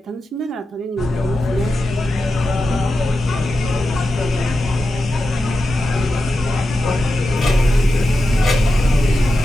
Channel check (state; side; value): normal; both; correlation 0.91